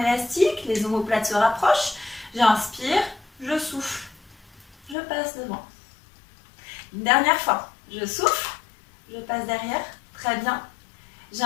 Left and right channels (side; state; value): right; drops out; at 5.0 s